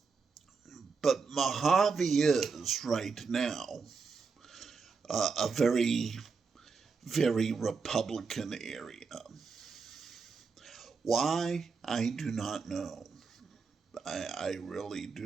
But Mojave is right now a very, very Republican area. Why? I do not know. I really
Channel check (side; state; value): left; quieter; 5.0 dB